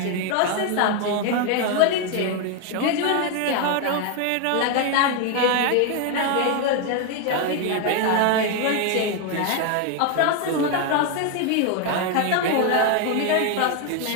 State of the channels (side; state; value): both; different; correlation 0.01